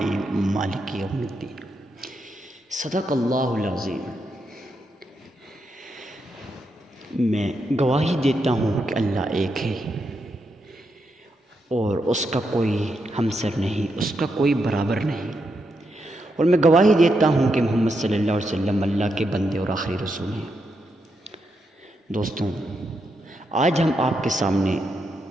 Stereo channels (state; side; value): normal; both; correlation 0.82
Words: مالک یوم الدین صدق اللہ العظیم۔ میں گواہی دیتا ہوں کہ اللہ ایک ہے اور اس کا کوئی ہمسر نہیں، اس کا کوئی برابر نہیں، اور میں گواہی دیتا ہوں کہ محمد صلی اللہ علیہ وسلم اللہ کے بندے اور آخری رسول ہیں۔ دوستوں، آج ہم آپ کے سامنے